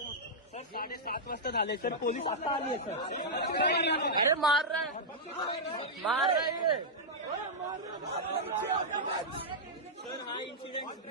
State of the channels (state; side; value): normal; both; correlation -0.08